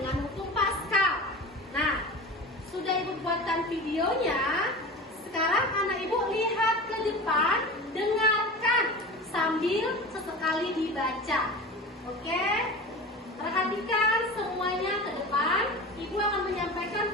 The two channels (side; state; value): both; normal; correlation 0.32